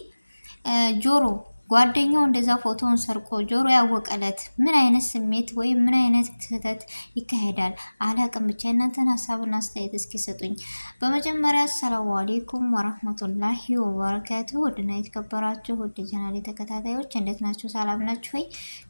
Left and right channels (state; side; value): inverted; both; correlation -1.00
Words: ጆሮ ጓደኛው እንደዛ ፎቶውን ሰርቆ ጆሮ ያወቀለት ምን አይነት ስሜት ወይም ምን አይነት ስህተት ይካሄዳል አላቅም። ብቻ እናንተን ሀሳብና አስተያየት እስኪ ሰጡኝ። በመጀመሪያ አሰላሙ አሌይኩም ወራህመቱላሂ ወበረካቱ። ውድና የተከበራችሁ ውድ ቻናሌ ተከታታዮች እንዴት ናችሁ? ሰላም ናችሁ ወይ?